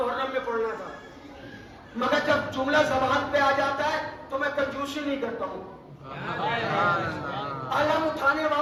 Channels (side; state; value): both; identical; correlation 1.00